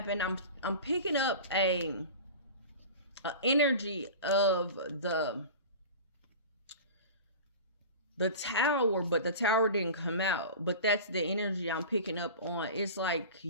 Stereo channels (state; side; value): inverted; both; correlation -0.34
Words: I'm picking up a energy of the tower, but the tower didn't come out. But that's the energy I'm picking up on. It's like